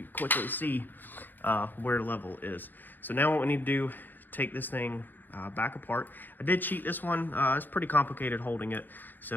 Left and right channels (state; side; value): late; right; 0.089 ms